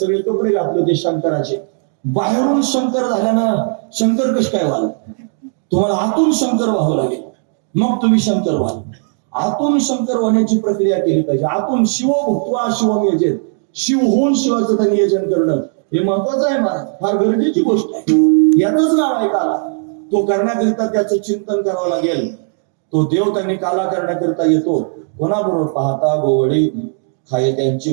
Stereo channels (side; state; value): left; silent; 56 dB below the other